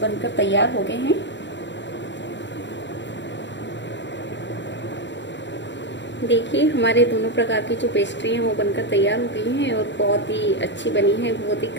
तैयार हो गए हैं। देखिए हमारे दोनों प्रकार की जो पेस्ट्री हैं वो बनकर तैयार हो गई हैं और बहुत ही अच्छी बनी है, बहुत ही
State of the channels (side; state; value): right; late; 0.52 ms